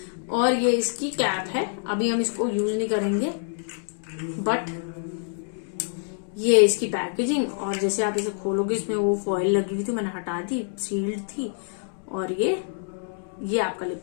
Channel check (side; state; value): right; silent; digital silence